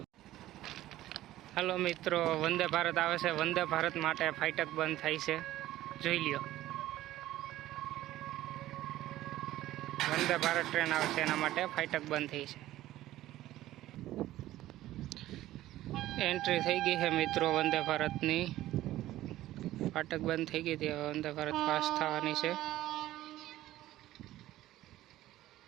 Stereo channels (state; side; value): quieter; left; 14.9 dB